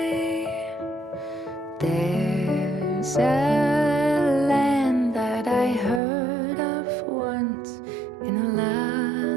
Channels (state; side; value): drops out; left; at 6.0 s